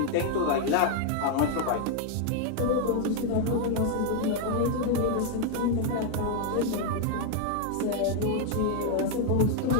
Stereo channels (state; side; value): different; both; correlation 0.00